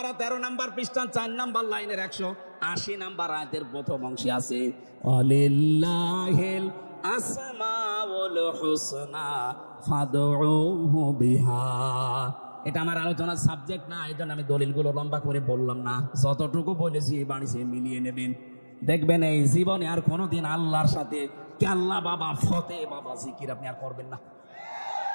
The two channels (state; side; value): inverted; both; correlation -1.00